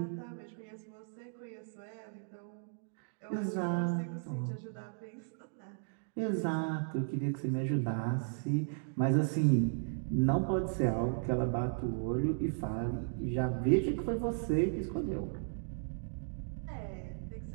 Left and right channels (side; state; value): left; silent; digital silence